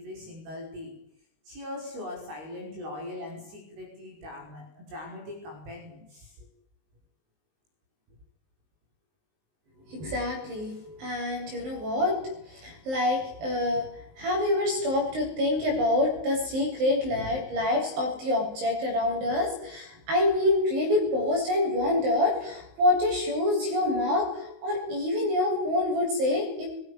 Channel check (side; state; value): left; late; 19 ms